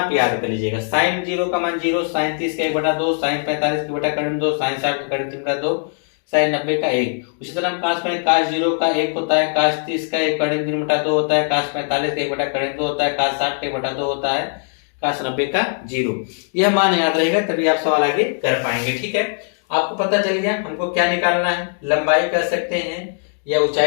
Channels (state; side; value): silent; right; 57 dB below the other